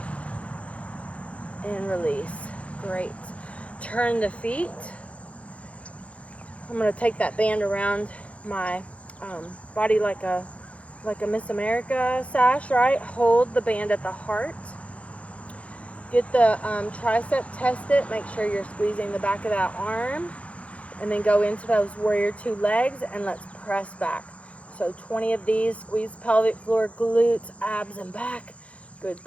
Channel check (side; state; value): right; late; 0.063 ms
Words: And release. Great. Turn the feet. I'm going to take that band around my body like a Miss America sash, right? Hold the band at the heart. Get the tricep tested. Make sure you're squeezing the back of that arm. And then go into those warrior two legs, and let's press back. So 20 of these. Squeeze pelvic floor, glutes, abs, and back. Good